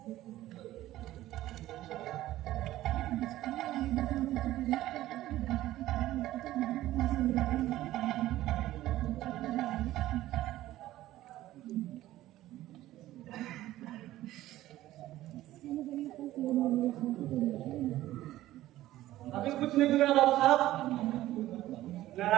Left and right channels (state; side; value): quieter; left; 15.0 dB